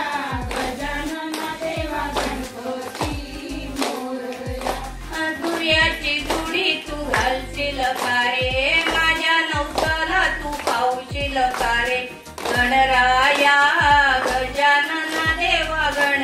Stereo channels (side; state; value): both; identical; correlation 1.00